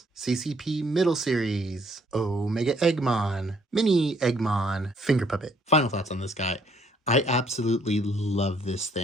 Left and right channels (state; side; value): normal; both; correlation 0.66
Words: CCP Middle series, Omega Eggmon, Mini Eggmon, Finger Puppet. Final thoughts on this guy. I absolutely love this